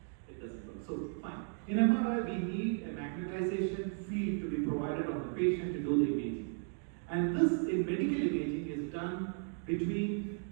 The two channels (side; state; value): left; silent; 54 dB below the other